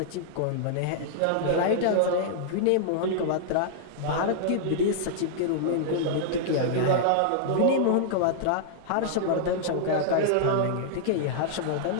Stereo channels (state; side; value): different; both; correlation -0.01